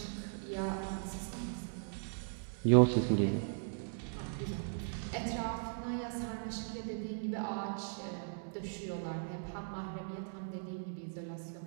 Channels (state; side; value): silent; left; digital silence